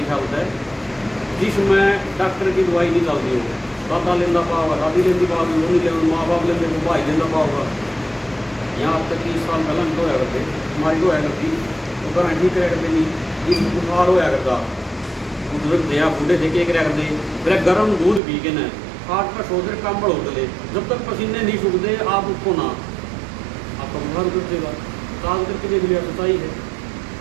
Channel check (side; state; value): left; drops out; at 18.2 s